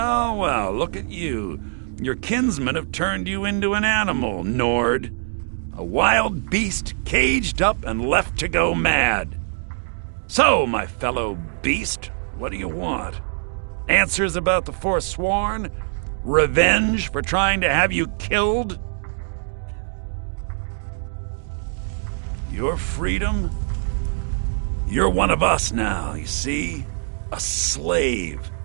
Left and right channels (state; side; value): silent; left; digital silence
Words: look at you. Your kinsmen have turned you into an animal, Nord. A wild beast caged up and left to go mad. So, my fellow beast, what do you want? Answers about the Forsworn? Revenge for trying to have you killed? Your freedom? You're one of us now, you see? A slave.